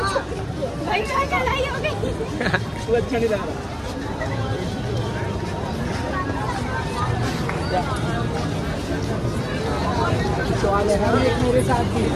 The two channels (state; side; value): identical; both; correlation 1.00